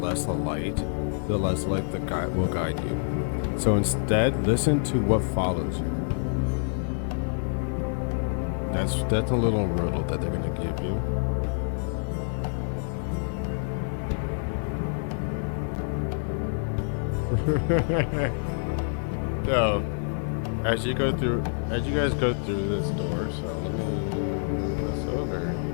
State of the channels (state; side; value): silent; right; 60 dB below the other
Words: the light the guide will guide you. So instead, listen to what follows you. That's a little riddle that they're gonna give you. So, as you guys go through this door, so let me move this over.